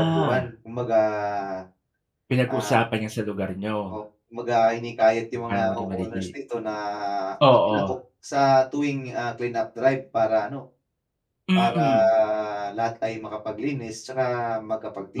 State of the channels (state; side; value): identical; both; correlation 1.00